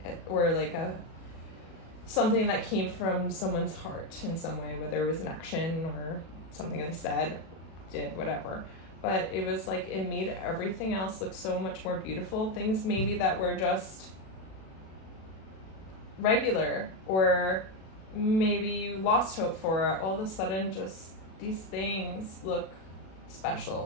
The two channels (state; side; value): late; right; 37 ms